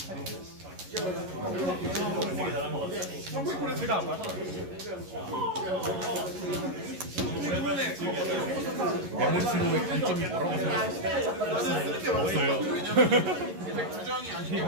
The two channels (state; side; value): late; left; 11 ms